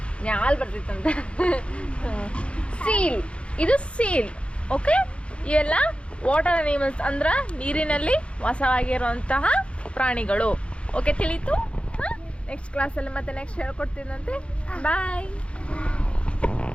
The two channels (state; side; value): late; right; 0.059 ms